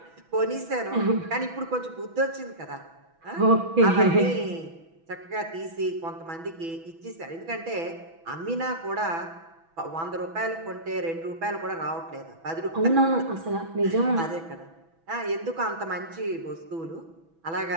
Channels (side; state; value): left; late; 6.1 ms